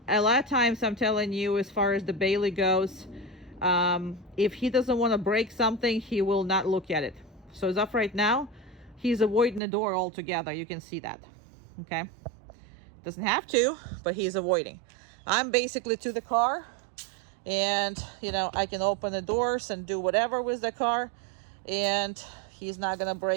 a lot of times I'm telling you, as far as the Bailey goes, if he doesn't want to break something, he will not look at it. So as of right now, he's avoiding the door altogether. You can see that. Okay, doesn't have to, but he's avoiding. I'm basically to the car, and you know, I can open the doors and do whatever with the car, and he's not gonna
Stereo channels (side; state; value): left; drops out; at 9.6 s